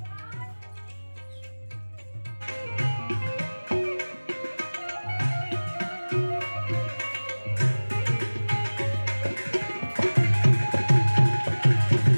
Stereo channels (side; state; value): both; inverted; correlation -1.00